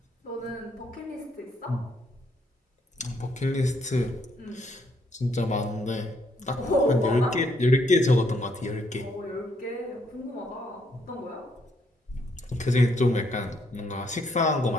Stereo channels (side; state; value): both; normal; correlation 0.72